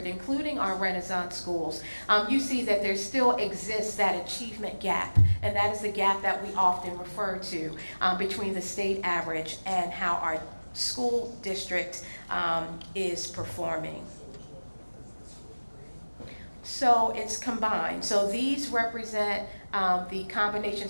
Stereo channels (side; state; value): both; inverted; correlation -1.00